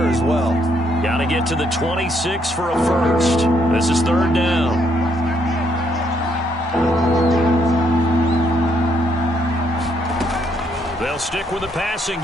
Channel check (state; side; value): normal; both; correlation 0.72